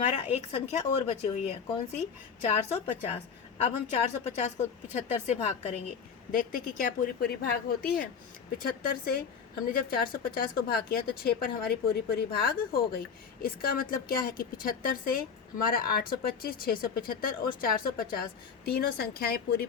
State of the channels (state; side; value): quieter; right; 6.4 dB